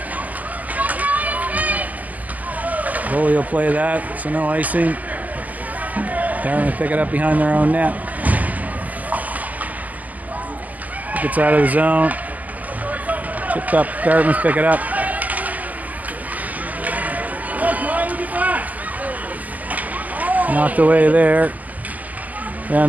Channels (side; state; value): left; late; 0.077 ms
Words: Chloe will play that, so no icing. Dartmouth pick it up behind their own net. Gets out of the zone. Chipped up. Dartmouth pick it up. Knocked away there.